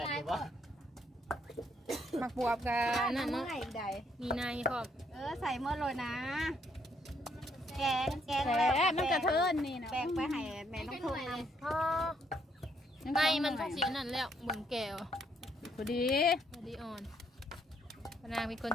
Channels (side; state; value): both; normal; correlation 0.71